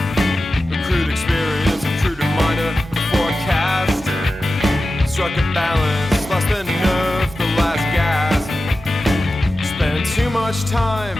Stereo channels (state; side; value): normal; both; correlation 0.93